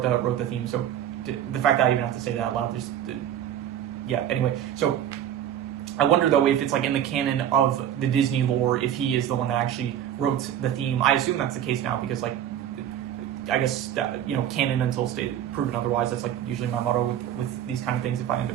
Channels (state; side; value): quieter; left; 10.5 dB